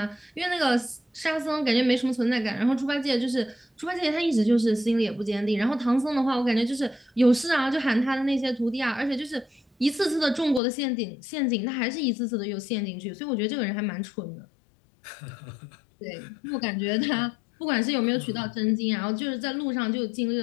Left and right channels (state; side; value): drops out; right; at 10.6 s